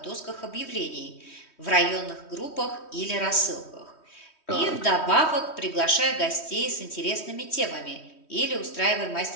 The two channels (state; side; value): late; right; 3.1 ms